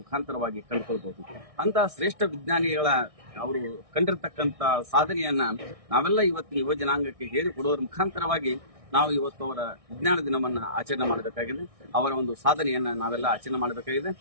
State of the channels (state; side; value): late; left; 1.6 ms